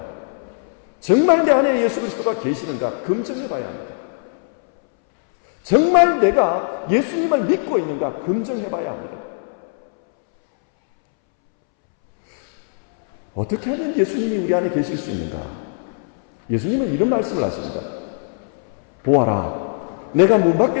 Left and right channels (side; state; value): right; silent; 65 dB below the other